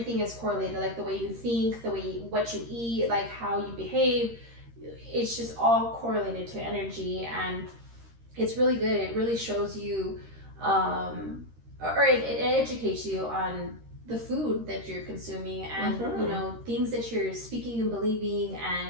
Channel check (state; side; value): late; left; 13 ms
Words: is correlated, like the way you think, what you eat, like how you behave. It's just all correlated to energy, and it's really good. It really shows you, or it educates you on the food that you're consuming, and things that you're speaking and believing,